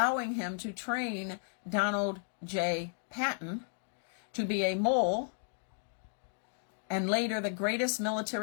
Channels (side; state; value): right; silent; 55 dB below the other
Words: him to train Donald J. Patton to be a mole and later the greatest